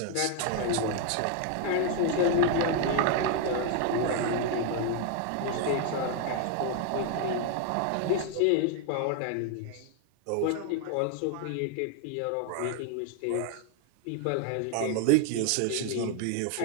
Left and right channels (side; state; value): both; different; correlation 0.00